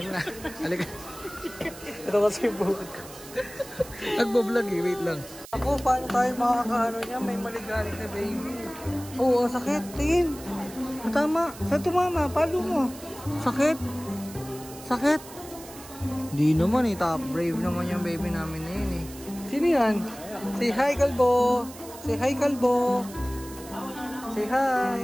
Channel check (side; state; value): right; noise; hiss, 17 dB below the sound